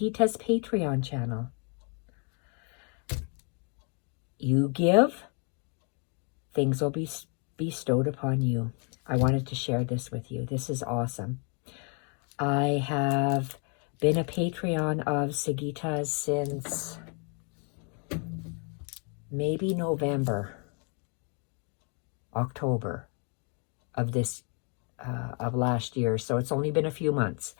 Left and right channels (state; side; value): quieter; right; 38.2 dB